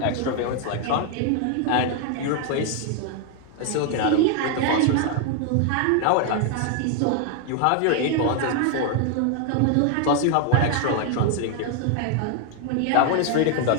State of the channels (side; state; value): both; different; correlation 0.00